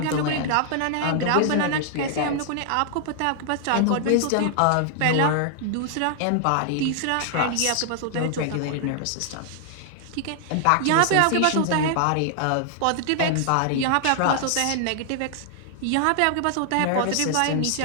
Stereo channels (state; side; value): different; both; correlation 0.00